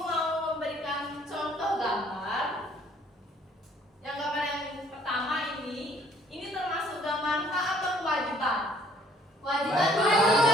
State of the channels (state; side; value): normal; both; correlation 0.60